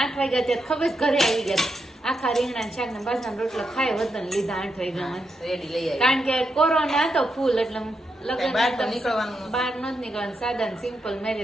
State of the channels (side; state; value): both; normal; correlation 0.83